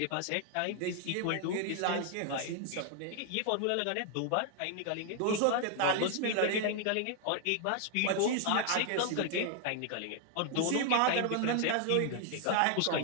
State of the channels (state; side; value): different; both; correlation 0.00